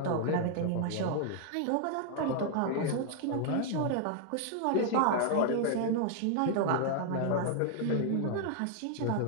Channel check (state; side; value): different; both; correlation 0.00